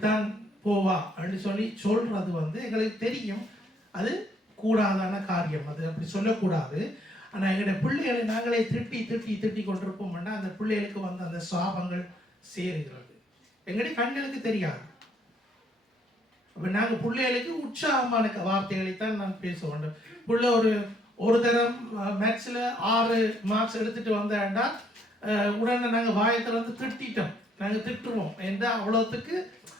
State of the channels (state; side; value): normal; both; correlation 0.68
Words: போவா அப்படின்னு சொல்றது எங்களுக்கு தெரியும். அது கூடாதான காரியம், அது அப்படி சொல்லக்கூடாது. ஆனால் எங்களுடைய பிள்ளைகளை நாங்களே திட்டி கொண்டிருப்போம்னா அந்த பிள்ளைகளுக்கு அந்த சாபங்கள் சேருகிறது. எங்களுடைய கண்களுக்கு தெரியாது. அப்போ நாங்கள் பிள்ளைகளுக்கு உற்சாகமான வார்த்தைகளைத்தான் நான் பேச வேண்டும். பிள்ளை ஒரு தரம் மேத்ஸில் 6 மார்க்ஸ் எடுத்துட்டு வந்தேன்டா உடனே நாங்கள் வாயத்தில் திட்டோம். நாங்கள் திட்டுவோம் என்றால் அவ்வளோத்துக்கு